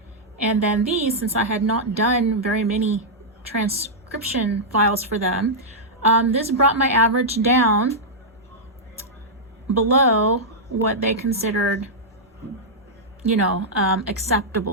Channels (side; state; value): both; normal; correlation -0.08